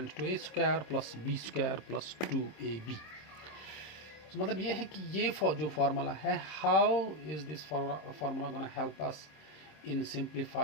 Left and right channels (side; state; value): right; late; 26 ms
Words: to a square plus b square plus 2ab. So मतलब ये है कि ये जो formula है, how is this formula going to help us in